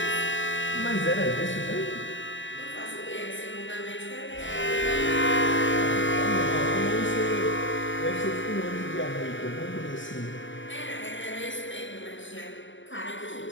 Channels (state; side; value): late; right; 0.55 ms